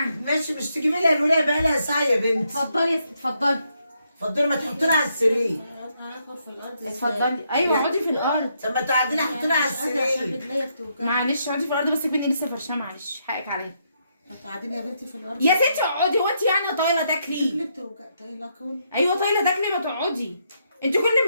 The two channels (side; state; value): both; inverted; correlation -0.77